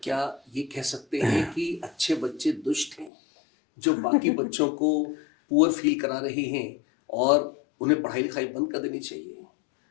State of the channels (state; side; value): drops out; right; at 3.1 s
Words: क्या ये कह सकते हैं कि अच्छे बच्चे दुष्ट हैं जो बाकी बच्चों को पुअर फील करा रहे हैं और उन्हें पढ़ाई लिखाई बंद कर देनी चाहिए?